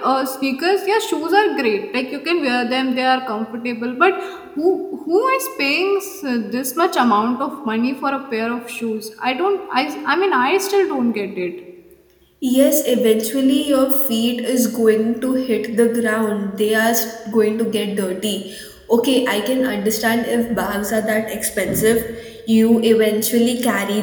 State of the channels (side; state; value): both; identical; correlation 1.00